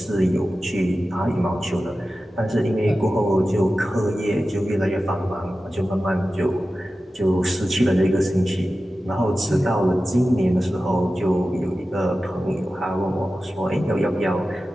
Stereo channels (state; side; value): normal; both; correlation 0.94